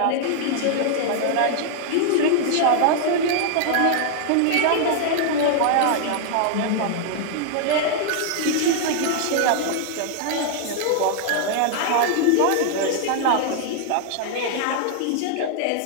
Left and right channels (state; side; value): different; both; correlation 0.00